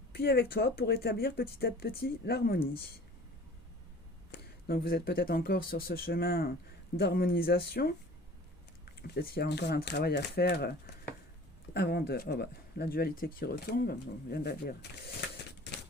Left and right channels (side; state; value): both; normal; correlation 0.45